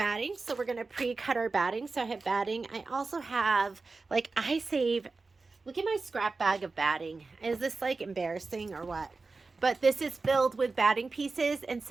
so we're going to pre-cut our batting. So I have batting. I also have, like, look at my scrap bag of batting. Is this like embarrassing or what? But this is filled with batting pieces, and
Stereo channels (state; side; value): quieter; left; 3.9 dB